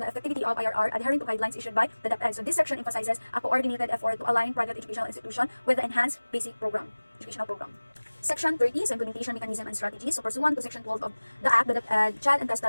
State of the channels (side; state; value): both; inverted; correlation -1.00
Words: effectivity of IRR, adhering to guidelines issued by the DepEd. So this section emphasizes a coordinated effort to align private educational institution with the enhanced basic educational program. Section 30 is implementation mechanism and strategies. So pursuant to Section 12 of the Act, the child and